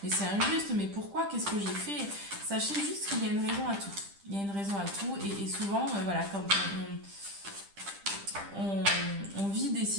mais c'est injuste, mais pourquoi, qu'est-ce que j'ai fait? Sachez juste qu'il y a une raison à tout. Il y a une raison à tout, et souvent, voilà, quand on vit des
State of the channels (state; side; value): late; left; 10 ms